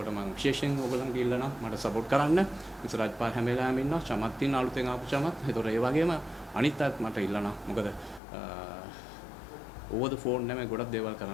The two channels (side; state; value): right; drops out; at 8.2 s